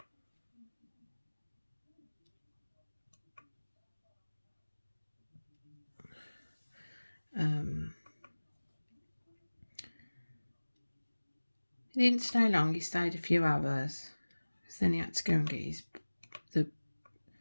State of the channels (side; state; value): both; inverted; correlation -1.00